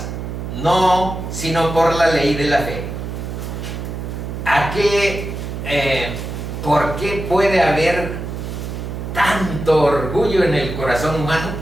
No, sino por la ley de la fe. ¿Por qué puede haber tanto orgullo en el corazón humano?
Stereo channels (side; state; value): right; noise; hum, 6 dB below the sound